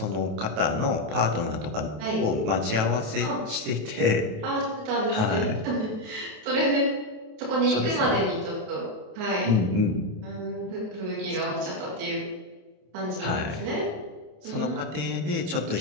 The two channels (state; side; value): late; left; 28 ms